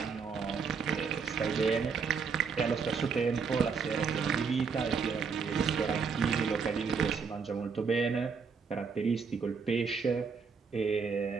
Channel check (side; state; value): left; quieter; 5.5 dB